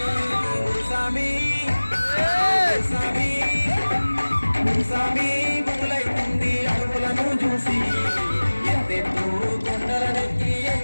గురుస్వామి గురుస్వామి గురుస్వామి గురులైతుంది అడుగులను చూసి ఎంతెత్తు కొండలనెక్కి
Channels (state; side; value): inverted; both; correlation -1.00